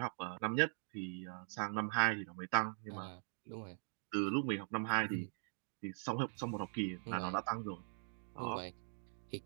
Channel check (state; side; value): silent; left; digital silence